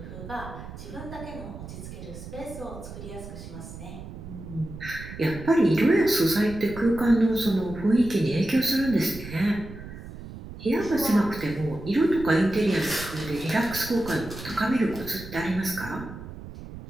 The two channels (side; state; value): right; noise; rumble, 12 dB below the sound